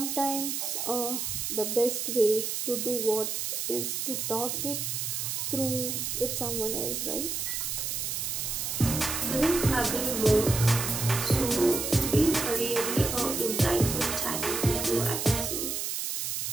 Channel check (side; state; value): right; noise; hiss, 2 dB below the sound